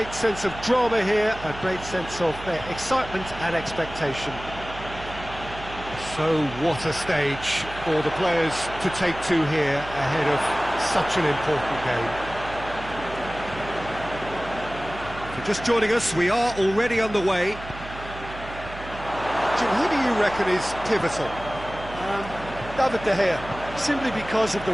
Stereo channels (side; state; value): right; noise; hum, 13 dB below the sound